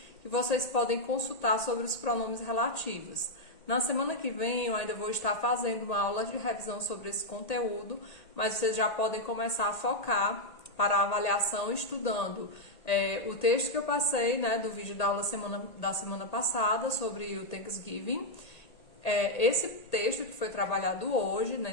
que vocês podem consultar sobre os pronomes relativos. Na semana que vem eu ainda vou estar fazendo uma aula de revisão sobre esse conteúdo, mas vocês já podem começar a focar para a avaliação estudando o texto que eu passei, do vídeo da aula da semana passada sobre o Thanksgiving. Esse texto que foi trabalhado hoje,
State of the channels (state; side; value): late; right; 1.8 ms